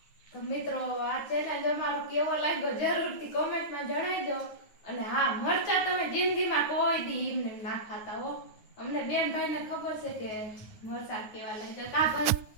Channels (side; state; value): right; late; 9.4 ms